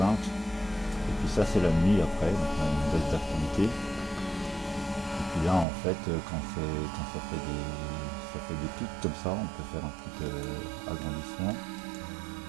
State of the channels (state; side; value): drops out; left; at 5.7 s